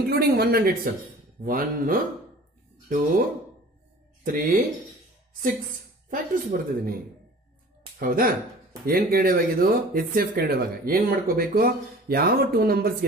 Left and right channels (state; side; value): normal; both; correlation 0.45